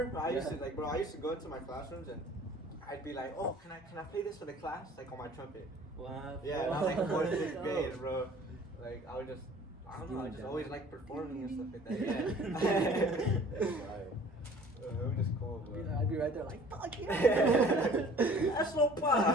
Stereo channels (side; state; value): both; normal; correlation 0.50